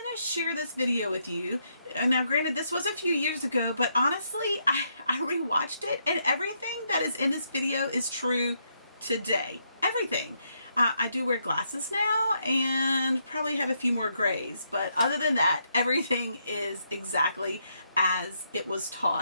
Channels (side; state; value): both; inverted; correlation -0.77